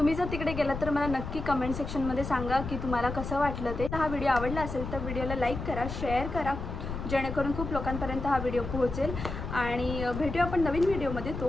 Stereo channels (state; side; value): noise; left; rumble, 6 dB below the sound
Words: जर तिकडे गेलात तर मला नक्की कमेंट सेक्शनमध्ये सांगा की तुम्हाला कसं वाटलं ते. हा व्हिडिओ आवडला असेल तर व्हिडिओला लाईक करा, शेअर करा, जेणेकरून खूप लोकांपर्यंत हा व्हिडिओ पोहोचेल. आणि भेटूया आपण नवीन व्हिडिओमध्ये.